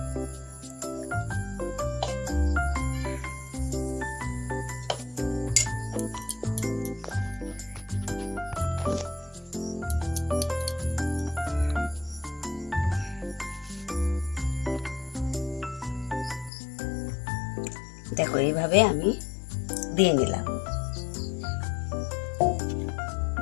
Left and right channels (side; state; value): right; drops out; at 16.5 s